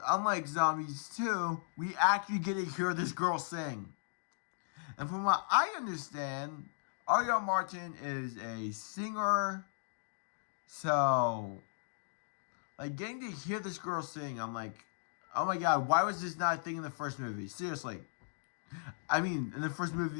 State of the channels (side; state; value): right; silent; digital silence